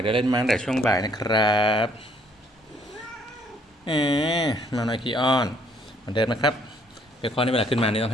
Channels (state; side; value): normal; both; correlation 0.64